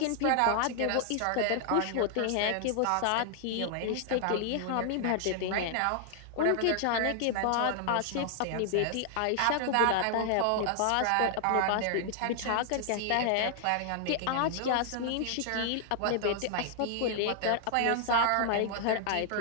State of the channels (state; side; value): different; both; correlation 0.00